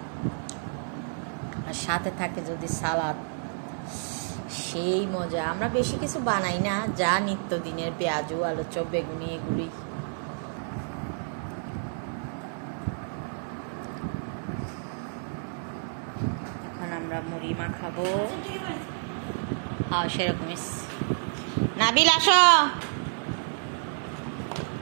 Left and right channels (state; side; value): silent; left; 58 dB below the other